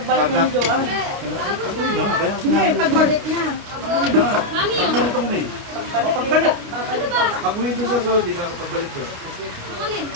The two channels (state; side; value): late; left; 29 ms